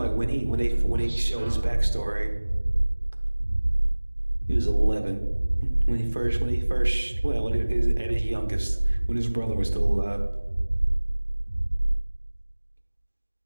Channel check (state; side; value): inverted; both; correlation -1.00